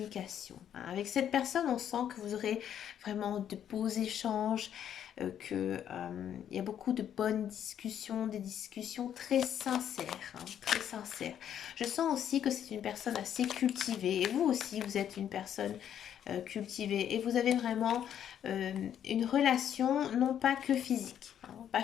Hein. Avec cette personne, on sent que vous aurez vraiment de beaux échanges, il y a beaucoup de bonnes discussions, des discussions très sincères, hein, très sincères. Je sens aussi que c'est une personne assez cultivée, et vous aussi, vous êtes une personne cultivée, et vous avez vraiment une relation, non pas que physique, hein, pas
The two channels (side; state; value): right; quieter; 9.7 dB